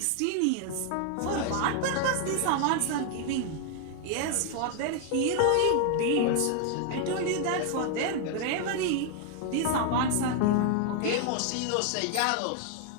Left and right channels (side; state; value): both; different; correlation 0.00